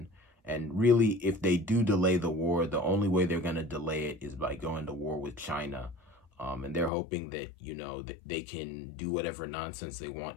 And really, if they do delay the war, the only way they're going to delay it is by going to war with China. And they're hoping that, that they can do whatever nonsense they want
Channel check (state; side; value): drops out; right; at 6.9 s